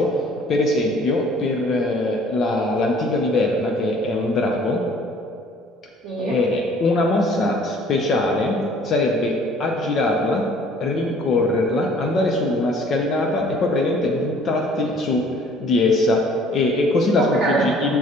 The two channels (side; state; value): both; normal; correlation 0.55